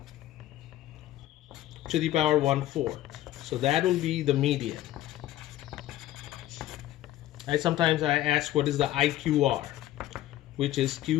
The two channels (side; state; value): right; quieter; 14.3 dB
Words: to the power 1/4. So that will be the median. Sometimes I ask, what is the IQR, which is